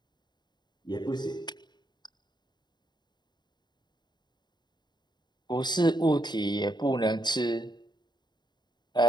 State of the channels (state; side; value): late; right; 0.21 ms